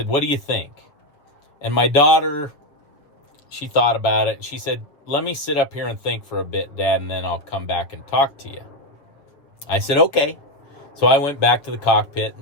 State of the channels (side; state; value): right; late; 6.9 ms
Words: what do you think? And my daughter, she thought about it. She said, let me sit up here and think for a bit, Dad, and then I'll come back and talk to you. I said, okay. So I went back to the cockpit,